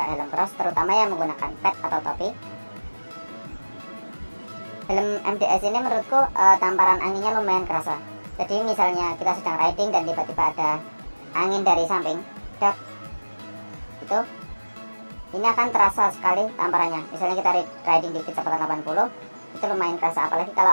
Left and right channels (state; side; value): inverted; both; correlation -1.00